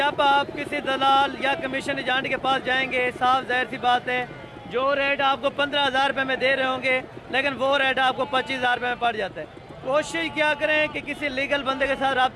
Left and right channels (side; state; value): both; identical; correlation 1.00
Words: आप किसी दलाल या कमीशन एजेंट के पास जाएंगे, साफ जाहिर सी बात है, जो रेट आपको 15,000 रुपये में दे रहे होंगे, लेकिन वो रेट आपको 25,000 रुपये में पड़ जाता है। कोशिश क्या करें कि किसी लीगल बंदे के साथ